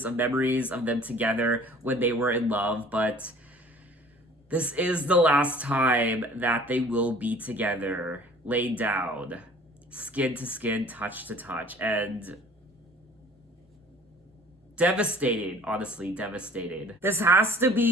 of memories of them together when they were in love, but this is the last time that they will be together, laid down, skin to skin, touch to touch, and devastating, honestly, devastating. This has to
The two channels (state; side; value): normal; both; correlation 0.50